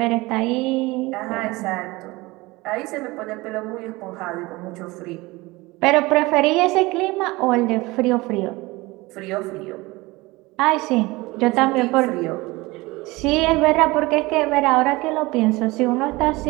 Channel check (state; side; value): quieter; left; 21.9 dB